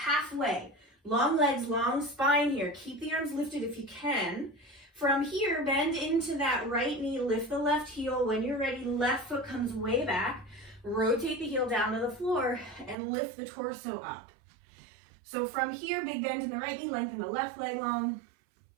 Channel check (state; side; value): drops out; left; at 13.0 s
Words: Long legs, long spine here. Keep the arms lifted if you can. From here, bend into that right knee, lift the left heel. When you're ready, left foot comes way back. Rotate the heel down to the floor and lift the torso up. So from here, big bend in the right knee, lengthen the left leg long.